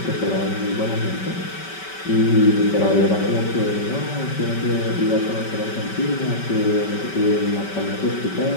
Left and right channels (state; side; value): late; right; 5.2 ms